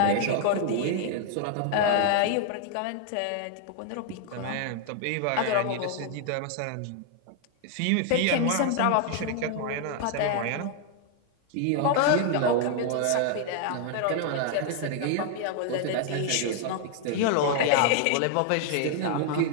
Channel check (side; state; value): both; different; correlation 0.00